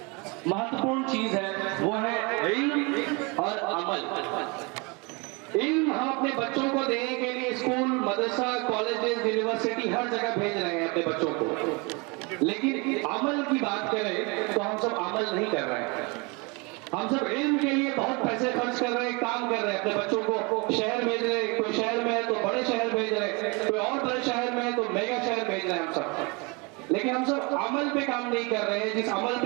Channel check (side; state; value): left; quieter; 29.1 dB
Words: महत्वपूर्ण चीज है, वो है इल्म और अमल। इल्म हम अपने बच्चों को देने के लिए स्कूल, मदरसा, कॉलेजेस, यूनिवर्सिटी हर जगह भेज रहे हैं अपने बच्चों को, लेकिन अमल की बात करें तो हम सब अमल नहीं कर रहे हैं। हम सब इल्म के लिए बहुत पैसे खर्च कर रहे हैं, काम कर रहे हैं, अपने बच्चों को शहर भेज रहे हैं, कोई शहर में है तो बड़े शहर भेज रहे हैं, कोई और बड़े शहर में है तो मेगा शहर भेज रहे हैं हम सब, लेकिन हम सब अमल पे काम नहीं कर रहे हैं। जिस अमल